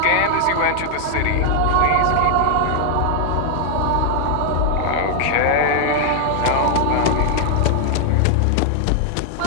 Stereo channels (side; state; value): both; different; correlation 0.00